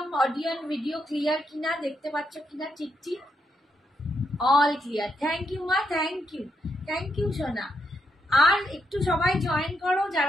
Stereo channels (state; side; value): normal; both; correlation 0.80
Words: অডিও এন্ড ভিডিও ক্লিয়ার কিনা, দেখতে পাচ্ছ কিনা ঠিক ঠিক। অল ক্লিয়ার, থ্যাংক ইউ মা, থ্যাংক ইউ সোনা। আর একটু সবাই জয়েন করো